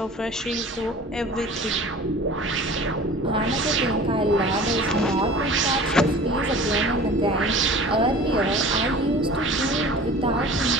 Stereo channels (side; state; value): both; normal; correlation 0.42